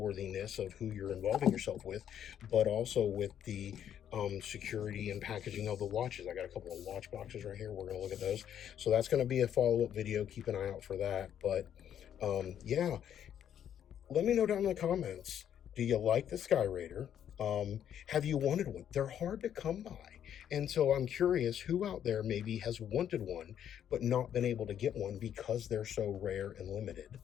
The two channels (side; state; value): right; quieter; 9.7 dB